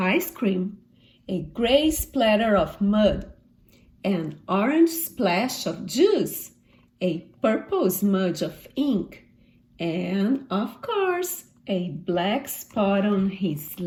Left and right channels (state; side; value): identical; both; correlation 1.00